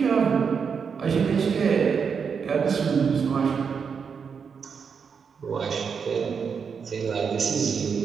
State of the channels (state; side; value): quieter; left; 6.2 dB